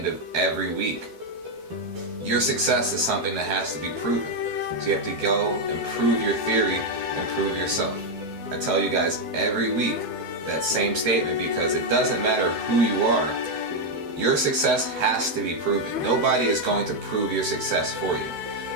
of every week, your success is something that has to be proven. So you have to go and prove your theory and prove yourself. I tell you guys every week that same statement, because it doesn't matter who you are, your success has to be proven. Nobody is going to prove your success for you.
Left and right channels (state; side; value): late; left; 12 ms